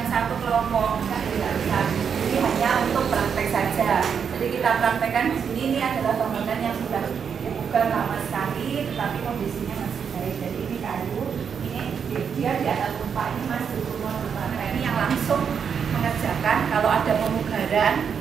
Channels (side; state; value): left; quieter; 7.0 dB